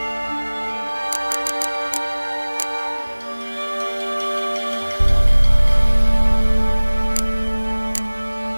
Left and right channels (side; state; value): both; inverted; correlation -1.00